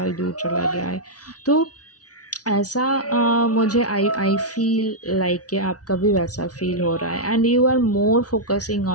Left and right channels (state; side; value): late; right; 0.68 ms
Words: दूर चला गया है। तो ऐसा मुझे आई फ़ील लाइक कि आपका भी वैसा फ़ील हो रहा है and you are more focusing